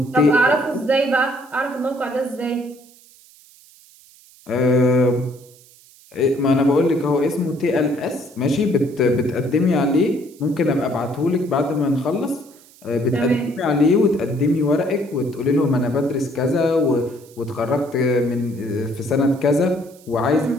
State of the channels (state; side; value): noise; right; hiss, 26 dB below the sound